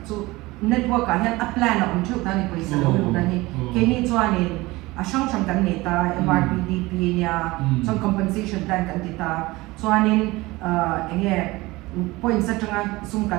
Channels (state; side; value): quieter; left; 20.9 dB